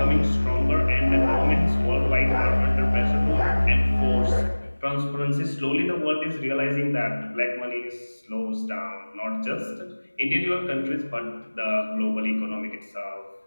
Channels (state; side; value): inverted; both; correlation -1.00